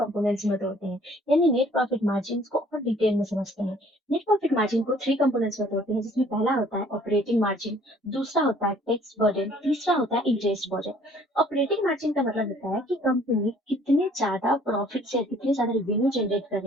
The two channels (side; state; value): both; normal; correlation 0.57